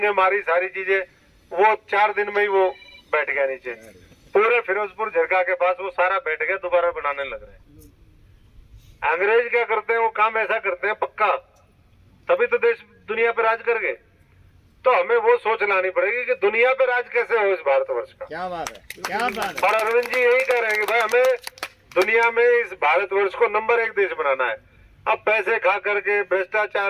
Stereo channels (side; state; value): both; identical; correlation 1.00